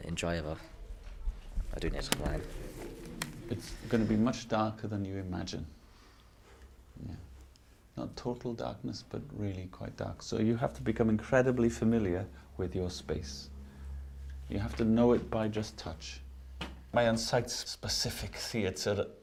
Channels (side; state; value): both; identical; correlation 1.00